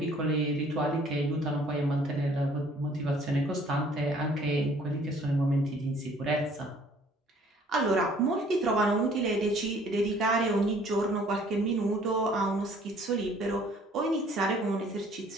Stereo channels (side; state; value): both; normal; correlation 0.57